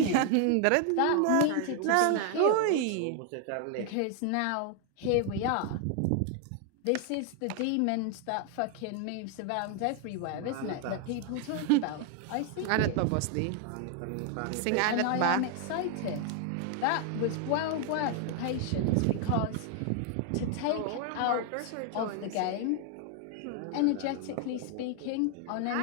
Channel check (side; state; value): both; different; correlation 0.00